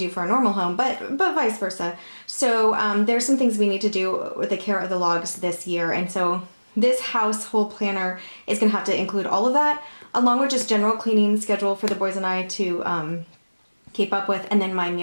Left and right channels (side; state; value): both; inverted; correlation -1.00